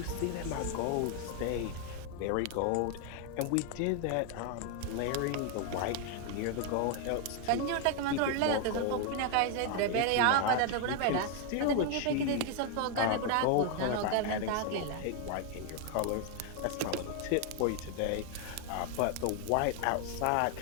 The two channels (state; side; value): different; both; correlation 0.01